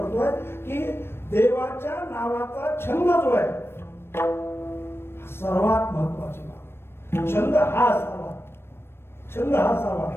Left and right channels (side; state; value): right; late; 0.12 ms